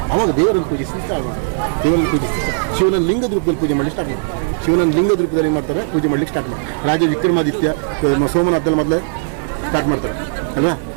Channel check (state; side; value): silent; left; 65 dB below the other